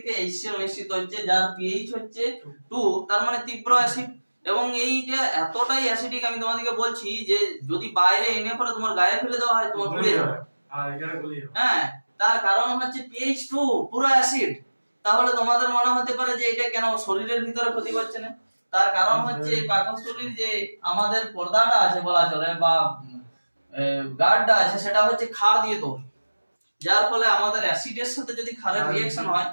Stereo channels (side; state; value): both; inverted; correlation -1.00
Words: HCl নিশ্চিত হচ্ছে, যার pH হচ্ছে 2, তার মানে তীব্র অ্যাসিড। এবং এইটা এতটাই অ্যাসিডিক আমি তোমাদেরকে বলছি যে যদি বাইরে এনে পরে তোমার গায়ে ফেলে দেওয়া হয় তোমার গুলিয়ে যাবে। হ্যাঁ, তার কারণ হচ্ছে pH 2 পুরো অ্যাসিড। তাহলে তোমাদের মনে হতে পারে যে এটা কেন শরীরের ভিতরে ক্ষতি করছে না? তার কারণ হচ্ছে পাকস্থলীর যে আমাদের পর্দাটা আছে বলা চলে বা গার্ডটা আছে সেটা হচ্ছে ক্ষার দিয়ে তৈরি, যার ফলে আমাদের অ্যাসিডের সাথে যদি ক্ষারের রিঅ্যাকশন হয়